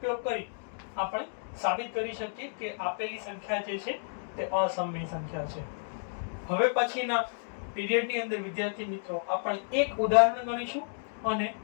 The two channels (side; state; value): right; silent; digital silence